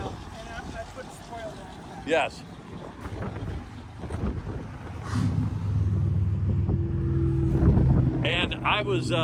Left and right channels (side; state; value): both; identical; correlation 1.00